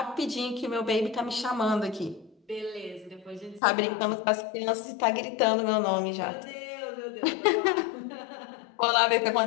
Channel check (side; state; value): right; drops out; at 3.6 s